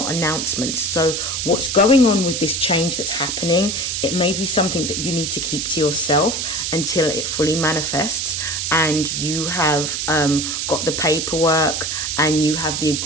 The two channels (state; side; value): noise; right; hiss, 2 dB below the sound